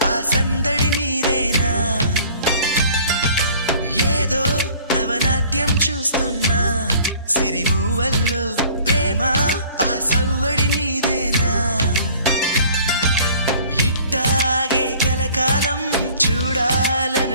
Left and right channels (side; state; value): both; inverted; correlation -0.51